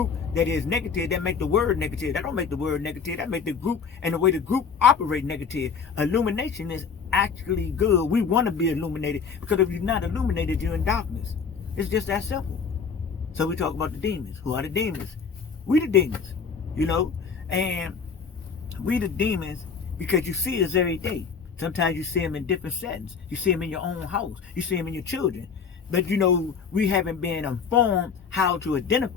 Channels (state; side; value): quieter; right; 6.0 dB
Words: that is negative, that make the word negative. That don't make the word negative. That make the group and the way the group operate negative. Illumination is actually good. We want to be illuminated, because if you're not illuminated, you're in darkness. It's just that simple. So we talk about the demons. Who are the demons? We the demons, you know, and we the demons because you see us every day. Sometimes you see them in different settings. You see them in your own house. You see them in your children. But you know, we haven't been informed how to